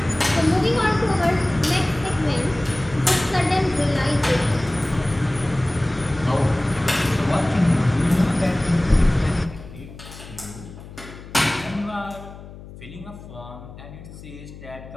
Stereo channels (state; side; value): noise; left; hum, 16 dB below the sound